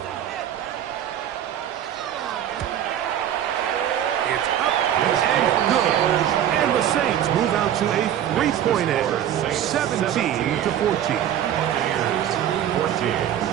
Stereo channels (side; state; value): left; quieter; 10.6 dB